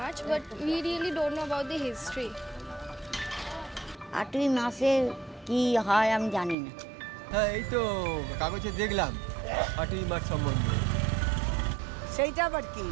but we really don't know about the history. 8ই মাসে কি হয় আমি জানি না। হ্যাঁ, এই তো কাগজে দেখলাম 8ই মার্চ সম্বন্ধে। সেইটা আবার কি?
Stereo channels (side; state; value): left; drops out; at 6.6 s